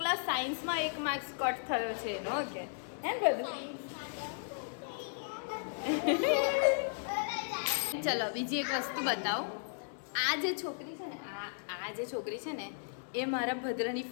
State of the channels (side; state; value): right; silent; digital silence